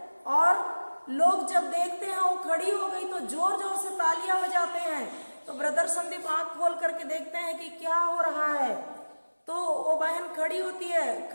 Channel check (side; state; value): both; inverted; correlation -1.00